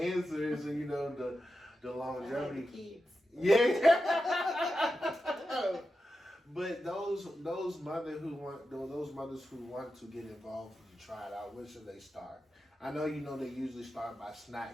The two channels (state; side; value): normal; both; correlation 0.90